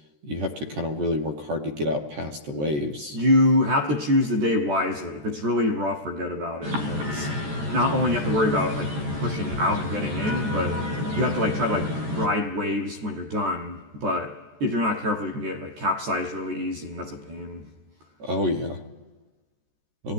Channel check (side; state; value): left; late; 14 ms